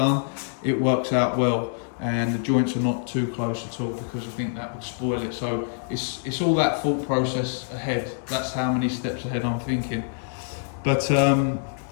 it works out well and the joints are not too close at all, because I think that would spoil it. So it's all that thought process ahead. That's how many steps ahead I'm thinking. But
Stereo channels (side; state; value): right; silent; digital silence